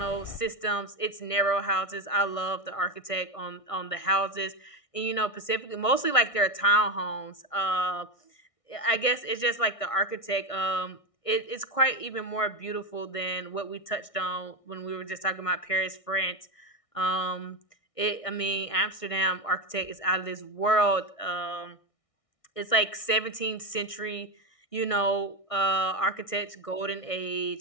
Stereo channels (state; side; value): late; right; 1.6 ms